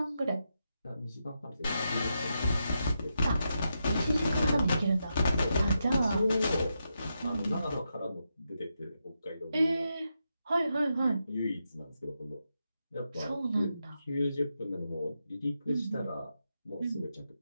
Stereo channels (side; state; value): both; inverted; correlation -0.85